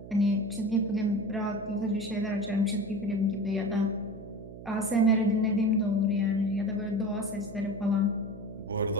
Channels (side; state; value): right; noise; hum, 14 dB below the sound